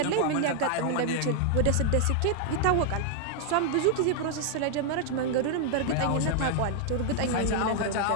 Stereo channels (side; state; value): both; different; correlation 0.00